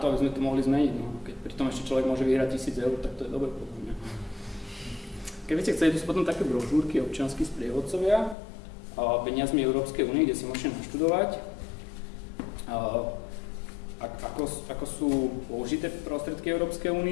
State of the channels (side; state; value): right; drops out; at 8.3 s